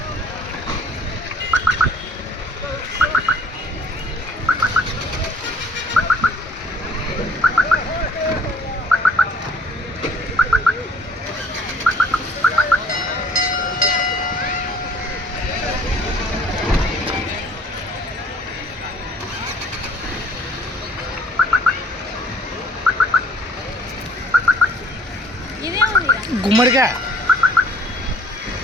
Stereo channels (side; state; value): both; normal; correlation 0.56